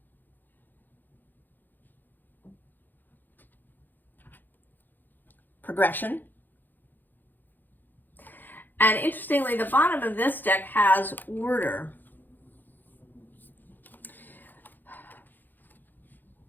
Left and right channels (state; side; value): late; right; 0.088 ms